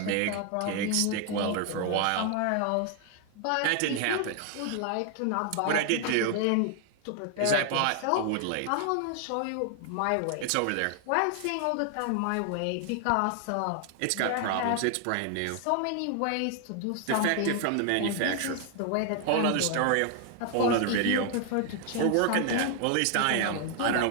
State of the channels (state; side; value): different; both; correlation 0.00